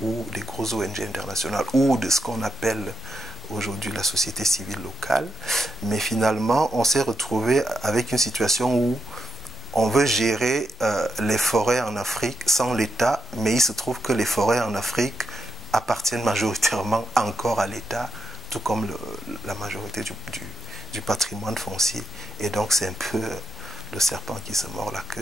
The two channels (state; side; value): normal; both; correlation 0.85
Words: ou des grosses ONG internationales ou de ce qu'on appelle aujourd'hui la société civile locale. Mais finalement, on s'est retrouvé avec une situation où on veut gérer les forêts en Afrique sans l'État, mais il se trouve que les forêts en Afrique appartiennent majoritairement encore à l'État, tout comme la majorité du patrimoine foncier. Et donc c'est un peu le serpent qui se mord la